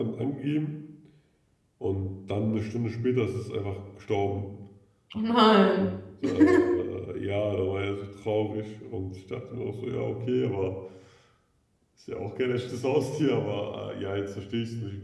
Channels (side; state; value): both; identical; correlation 1.00